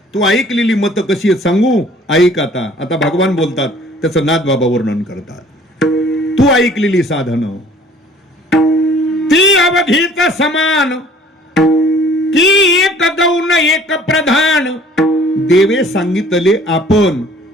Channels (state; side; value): normal; both; correlation 0.53